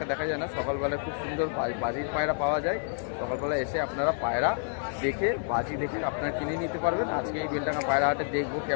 দেখা যায় না। সকালবেলায় খুব সুন্দর বাজির পায়রা পাওয়া যায়। সকালবেলা এসে আপনারা পায়রা দেখে বাজি দেখে আপনারা কিনে নিতে পারবেন। আজকে এই বেলডাঙ্গা পায়রা হাটে দেখবো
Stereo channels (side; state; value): right; silent; 59 dB below the other